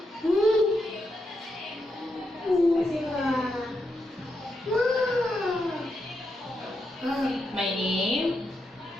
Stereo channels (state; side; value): normal; both; correlation 0.83